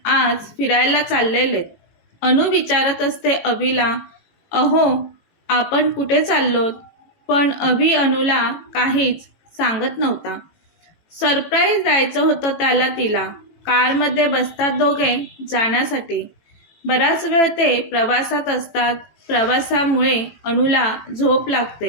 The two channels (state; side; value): late; right; 18 ms